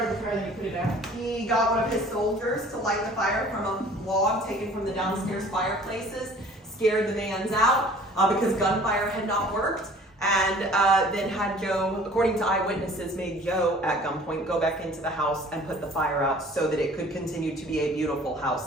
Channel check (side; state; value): both; normal; correlation 0.50